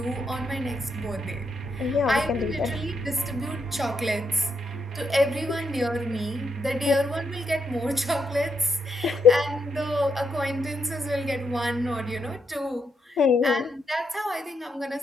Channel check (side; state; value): both; normal; correlation 0.78